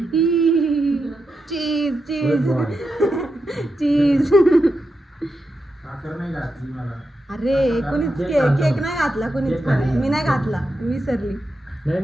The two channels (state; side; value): normal; both; correlation 0.87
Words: चीज चीज चीज. साखर नाही घातली मला. अरे कोणीच केक नाही घातला, कोणीच मी नाही घातला, मी विसरली.